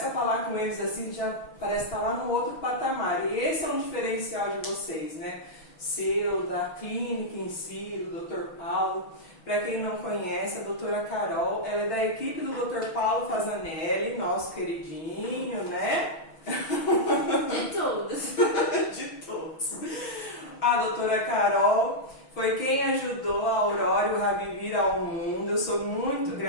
a falar com eles assim, já parece estar lá no outro patamar. E esse é um diferencial de vocês, né? Seu, da clínica em si, do Dr. Paulo. Para quem não conhece, a doutora Carol, ela é da equipe do Dr. Paulo Fazanelli, nosso queridinho, né? De todos. De todos. A doutora Carol foi quem ajudou a Aurora e o Rabi vir ao mundo. Eu sou muito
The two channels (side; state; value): right; late; 6.2 ms